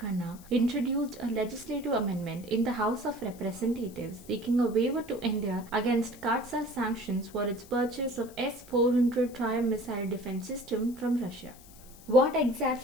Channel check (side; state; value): left; noise; hiss, 22 dB below the sound